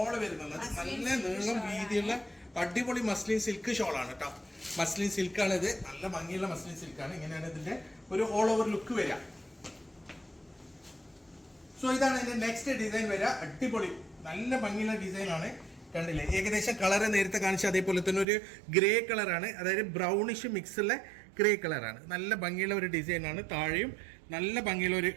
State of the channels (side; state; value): left; drops out; at 18.2 s